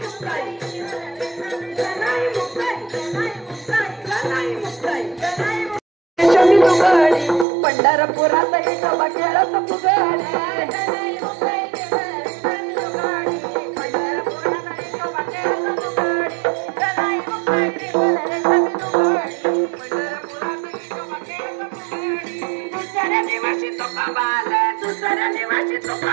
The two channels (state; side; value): drops out; left; at 7.5 s